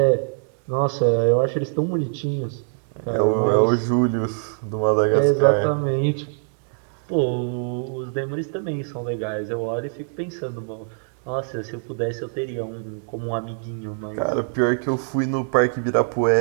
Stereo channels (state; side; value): silent; left; digital silence